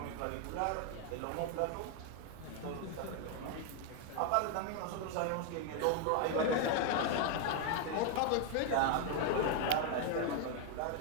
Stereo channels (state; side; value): different; both; correlation 0.00